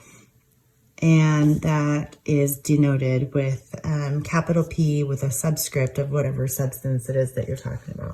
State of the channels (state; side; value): identical; both; correlation 1.00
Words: and that is denoted with capital P with a subscript of whatever substance it is that you're talking